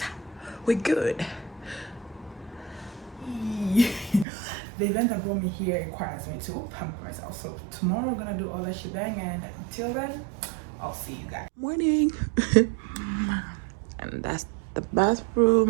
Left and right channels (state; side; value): drops out; left; at 4.2 s